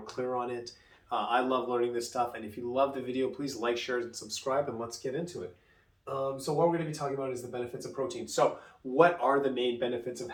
clear on it. I love learning this stuff, and if you love the video, please like, share, and subscribe, and let's get into it. So what we're going to be talking about is the benefits of protein. So what are the main benefits of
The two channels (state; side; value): identical; both; correlation 1.00